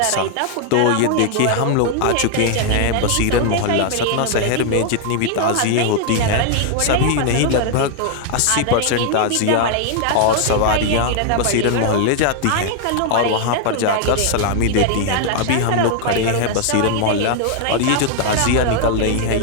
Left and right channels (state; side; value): different; both; correlation 0.00